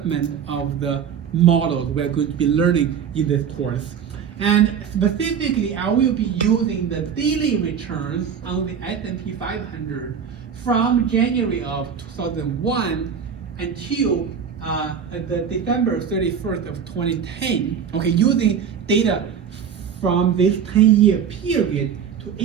of the models we're going to be learning in this course. And specifically, I will be using the daily returns on the S&P 500 from January of 2001 until the December 31st of 2010. Okay, using data from this 10-year period to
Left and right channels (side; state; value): left; quieter; 7.4 dB